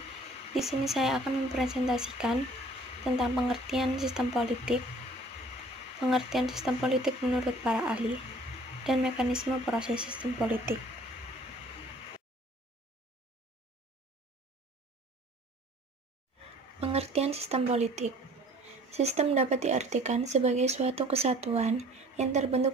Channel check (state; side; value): normal; both; correlation 0.52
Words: Di sini saya akan mempresentasikan tentang pengertian sistem politik menurut para ahli, dan mekanisme proses sistem politik. Pengertian sistem politik. Sistem dapat diartikan sebagai suatu kesatuan yang